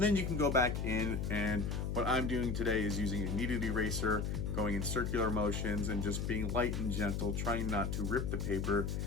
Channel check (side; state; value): left; noise; hum, 1 dB below the sound